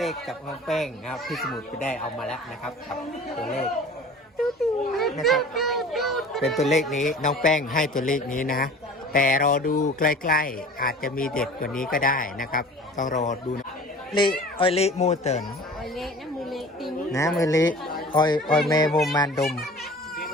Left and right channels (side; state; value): both; normal; correlation 0.42